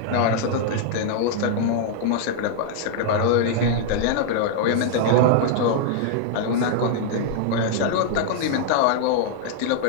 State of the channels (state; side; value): different; both; correlation -0.01